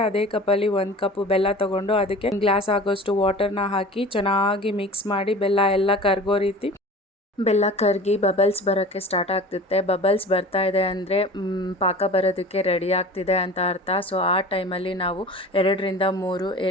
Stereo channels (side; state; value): both; normal; correlation 0.39